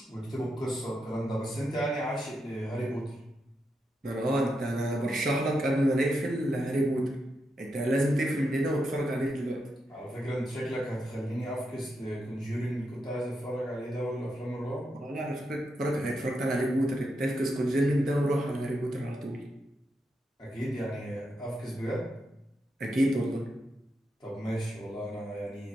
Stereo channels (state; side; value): normal; both; correlation 0.84